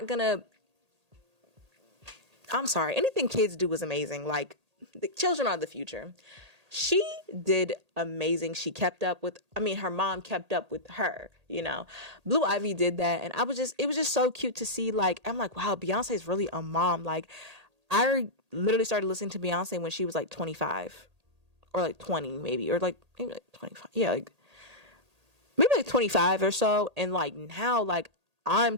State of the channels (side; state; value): left; late; 1.8 ms